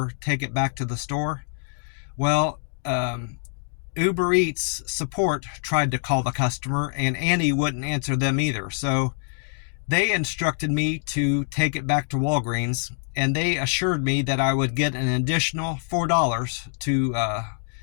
take it back to the store? Well, Uber Eats support tried to call the customer, and Annie wouldn't answer them either. So they instructed me to take it back to Walgreens, and they assured me that I would get an additional $4 to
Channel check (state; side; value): silent; right; 62 dB below the other